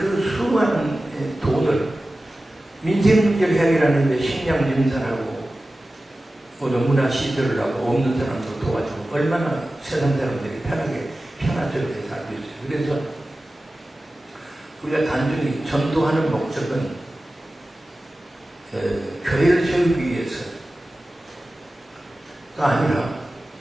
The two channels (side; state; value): both; normal; correlation 0.95